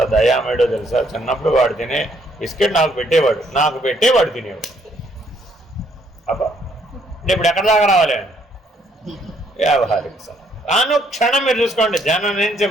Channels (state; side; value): normal; both; correlation 0.68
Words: దయామేడో తెలుసా? చిన్నప్పుడు వాడు తినే బిస్కెట్ నాకు పెట్టేవాడు తినేవాడు. అబ్బా, ఇప్పుడు ఎక్కడ దాకా రావాలి? వ్యావహారిక సత్తా. అనుక్షణం మీరు చూసుకోండి, జనం నుంచి